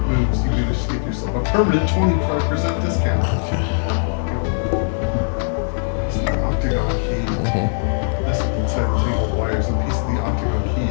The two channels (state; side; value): silent; right; digital silence